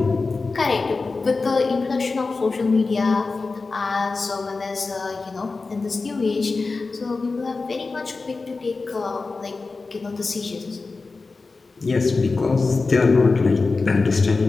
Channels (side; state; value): right; quieter; 3.9 dB